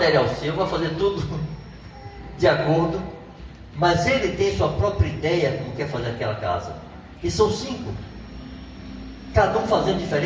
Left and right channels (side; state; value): both; identical; correlation 1.00